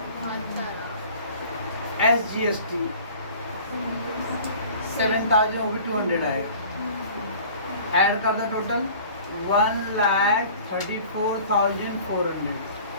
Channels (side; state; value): both; inverted; correlation -0.46